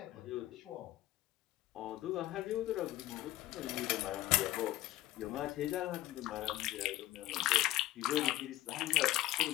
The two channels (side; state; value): right; quieter; 15.7 dB